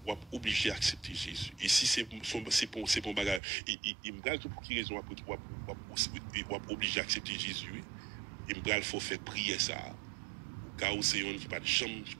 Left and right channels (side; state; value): left; drops out; at 3.4 s